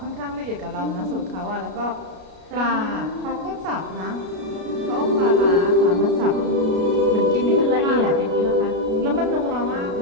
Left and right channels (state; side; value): late; left; 33 ms